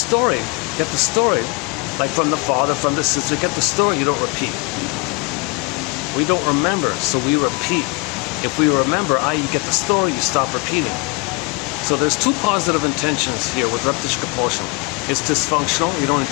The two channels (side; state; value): right; quieter; 27.1 dB